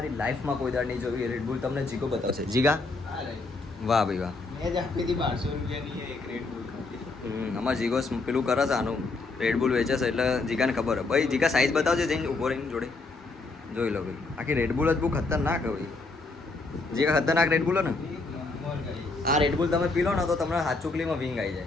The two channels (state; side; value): quieter; right; 3.6 dB